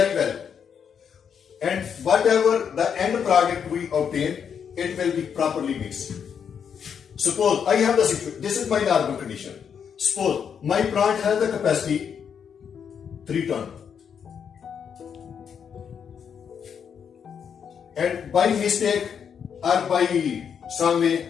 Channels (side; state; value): right; quieter; 7.4 dB